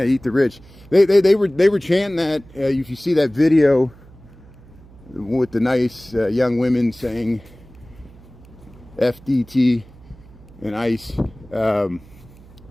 eat the rich. They were chanting that. If you see that video with the nice young women saying FDT and ICE,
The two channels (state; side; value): noise; right; hum, 23 dB below the sound